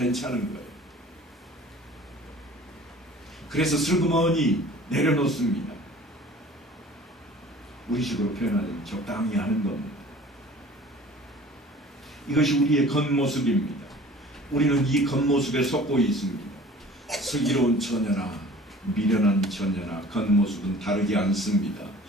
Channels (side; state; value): both; normal; correlation 0.46